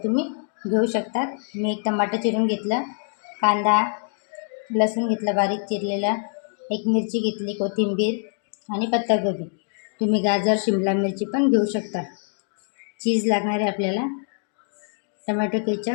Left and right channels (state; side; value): silent; right; 62 dB below the other